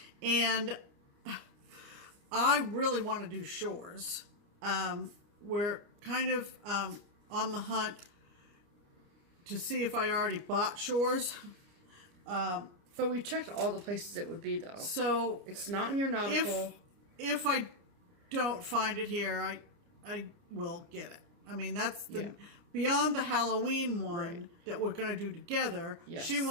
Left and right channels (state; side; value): late; left; 29 ms